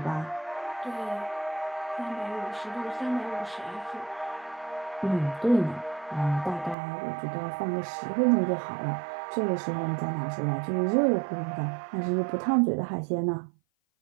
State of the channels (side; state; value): left; drops out; at 6.8 s